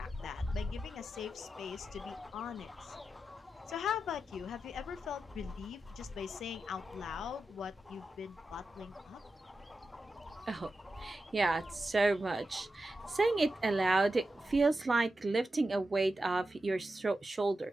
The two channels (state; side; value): normal; both; correlation 0.90